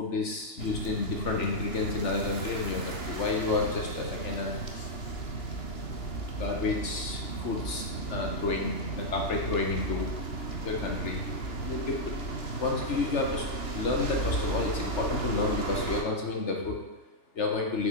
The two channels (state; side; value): late; right; 2.9 ms